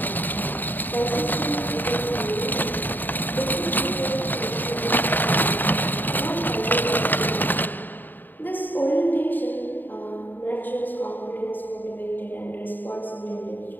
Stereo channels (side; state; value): right; late; 0.090 ms